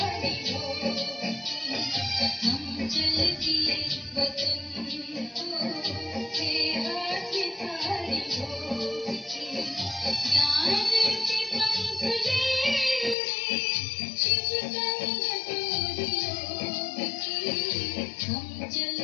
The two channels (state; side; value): drops out; right; at 13.2 s